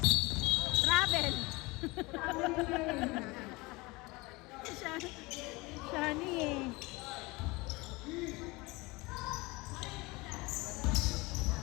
Travel! Shani eh.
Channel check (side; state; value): right; quieter; 23.7 dB